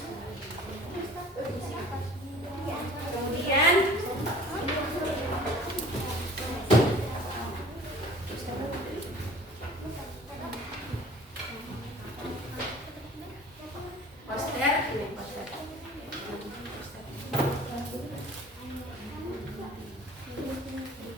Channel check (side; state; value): both; normal; correlation 0.47